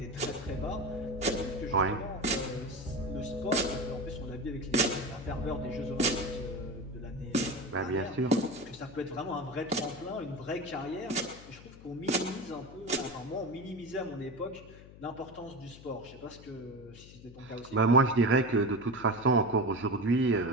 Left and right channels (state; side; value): noise; left; hum, 18 dB below the sound